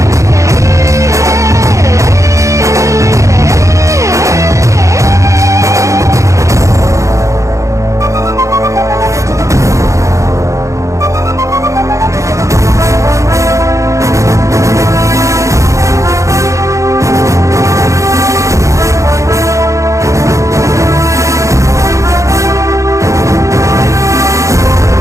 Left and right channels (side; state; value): left; late; 0.15 ms